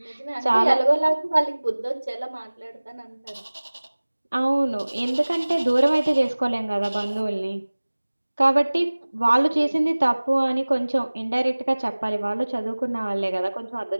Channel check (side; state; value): both; inverted; correlation -1.00